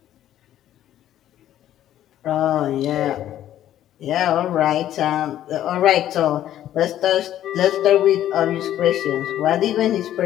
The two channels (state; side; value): quieter; right; 12.1 dB